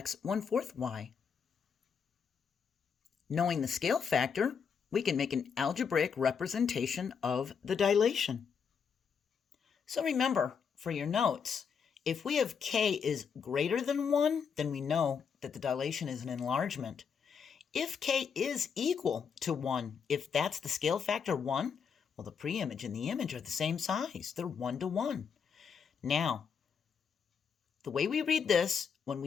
1/4 y. Knowing the scale factor, we can make an algebraic representation of the dilation. So remember, for your notes, if we have k is greater than 1, then we know that the dilation is an enlargement. If k is equal to 1, if that's the scale factor 1, well, the preimage and the image are the same size. They're 1 to 1. Now, the way we read this when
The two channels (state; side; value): quieter; right; 6.6 dB